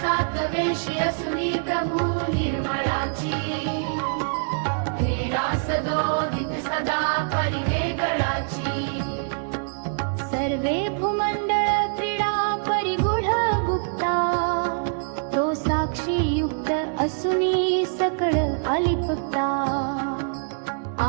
सात वेशी असुनी प्रभू निर्मळाची क्रीडा सदोदित सदा परिवेगळाची सर्वे भूमंडळ क्रीडा परिगूढ गुप्ता तो साक्षी युक्त असुनी सकळ अलिप्ता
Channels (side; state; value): left; silent; digital silence